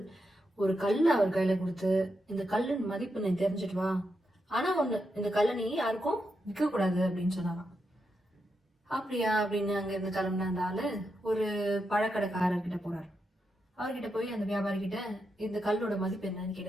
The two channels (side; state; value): both; normal; correlation 0.85